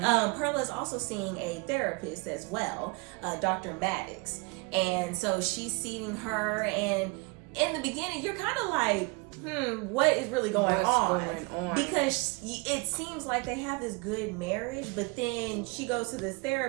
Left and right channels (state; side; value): quieter; left; 29.4 dB